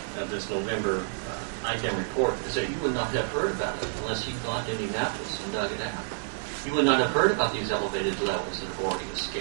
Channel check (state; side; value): silent; left; digital silence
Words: of this November IDEM report is that you would not have heard about it unless you gone to Indianapolis and dug it out. You would not have heard about these elevated levels that have already